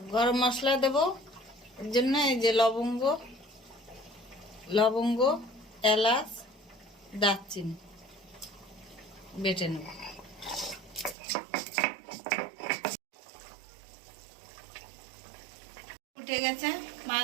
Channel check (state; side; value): drops out; left; at 11.2 s